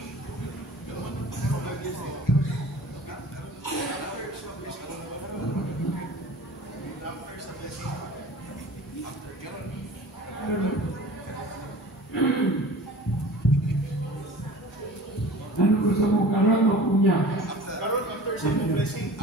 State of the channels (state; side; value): normal; both; correlation 0.42